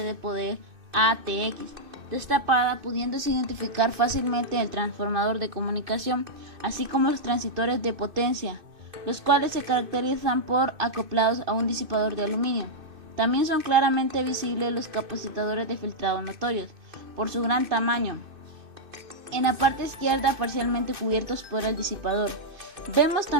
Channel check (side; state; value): left; late; 2.6 ms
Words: de poder ATX destapada, pudiéndose identificar fácilmente el transformador de comunicación, así como los transitores de potencia, los cuales se caracterizan por acoplados a un disipador de aluminio. También son claramente visibles los capacitadores de filtrado notorios, por su gran tamaño. En la parte izquierda parcialmente cubiertos por el disipador. Vemos